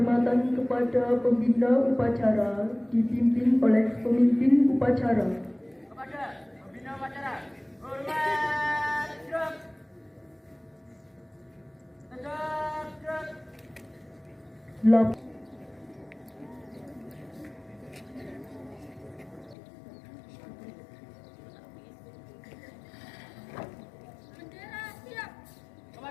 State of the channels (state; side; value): drops out; right; at 19.6 s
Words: kepada pembina upacara dipimpin oleh pemimpin upacara. Kepada pembina upacara, hormat gerak. Tegak gerak. Bendera siap.